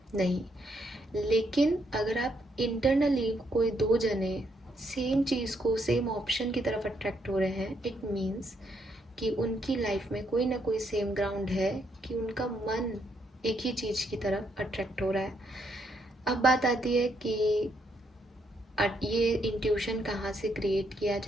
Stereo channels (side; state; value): both; normal; correlation 0.75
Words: नहीं। लेकिन अगर आप इंटरनली कोई 2 जने सेम चीज़ को, सेम ऑप्शन की तरफ अट्रैक्ट हो रहे हैं, इट मीन्स कि उनकी लाइफ में कोई ना कोई सेम ग्राउंड है कि उनका मन एक ही चीज़ की तरफ अट्रैक्ट हो रहा है। अब बात आती है कि ये इंट्यूशन कहाँ से क्रिएट किया